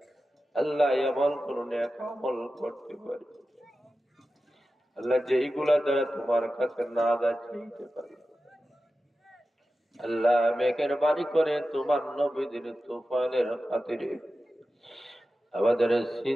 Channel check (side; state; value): both; normal; correlation 0.93